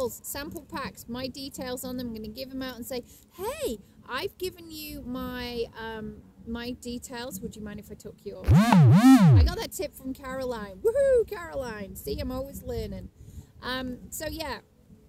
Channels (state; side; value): identical; both; correlation 1.00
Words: sample packs, my details on them. I'm going to give them out and say, hey, I've given you my my details. Would you mind if I took yours? I got that tip from Caroline. Woohoo, Caroline. See, I'm always learning. So yeah,